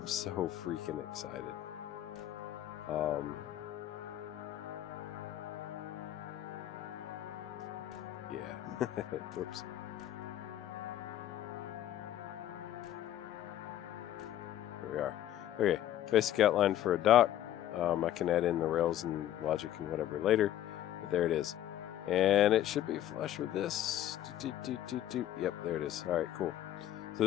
so freaking excited. Yeah. Whoops. There we are. Okay, basic outline for a dock. I can add in the rails and logic and whatever later, but there it is. And it should be flush with this. Yep, there it is. All right, cool. So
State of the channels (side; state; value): right; quieter; 12.3 dB